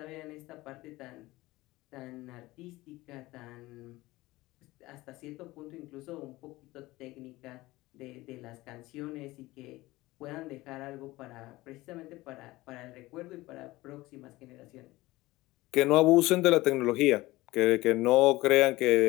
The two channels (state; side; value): quieter; right; 19.1 dB